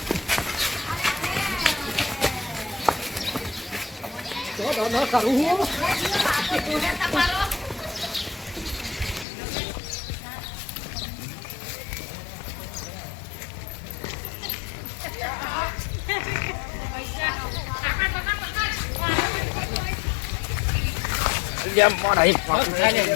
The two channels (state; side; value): drops out; right; at 9.2 s